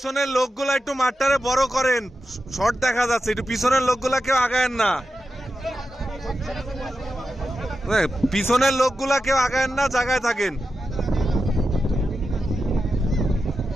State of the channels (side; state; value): both; normal; correlation 0.90